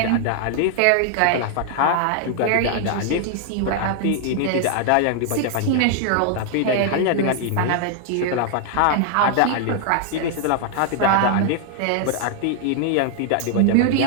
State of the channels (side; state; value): both; different; correlation 0.00